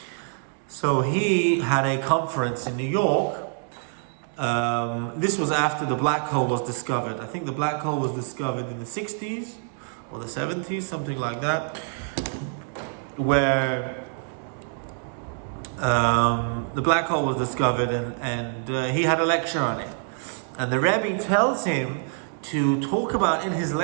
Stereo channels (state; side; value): silent; left; 61 dB below the other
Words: So he had a conference in New York. This was after the black hole was discovered. I think the black hole was discovered in the 60s or the 70s, something like that, where the black hole was discovered, and he had a lecture on it. And the Rebbe tells him to talk about in his